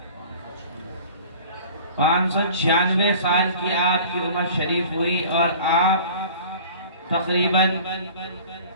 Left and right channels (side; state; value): both; inverted; correlation -0.44